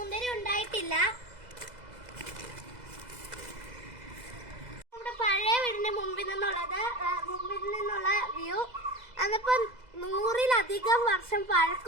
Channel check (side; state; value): left; late; 2.0 ms